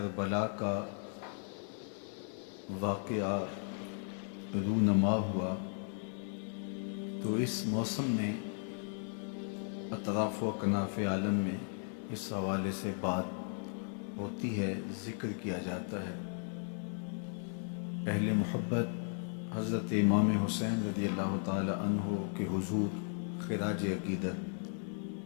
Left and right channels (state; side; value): silent; right; 54 dB below the other